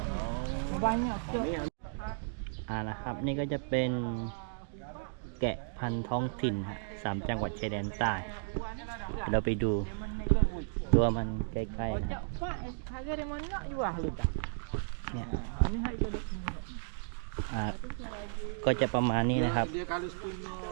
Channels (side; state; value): left; silent; digital silence